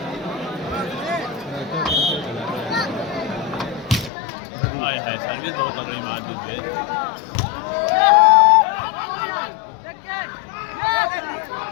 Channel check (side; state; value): right; drops out; at 4.1 s